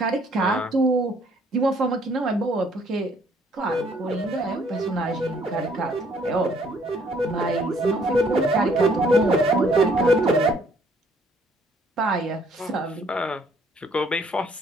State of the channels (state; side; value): normal; both; correlation 0.64